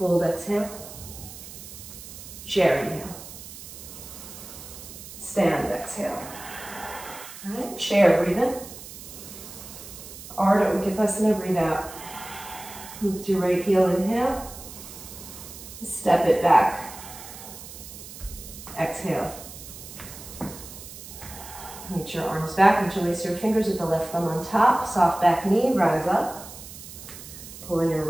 exhale. Chair, inhale. Stand, exhale. All right, chair, breathe in. Ardha Uttanasana, breathe out. Lift your right heel, inhale. Step it back. Exhale. Reach your arms back, interlace your fingers with the left thumb on top. Soft back knee, rise up. Pull in your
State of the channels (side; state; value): right; noise; hiss, 14 dB below the sound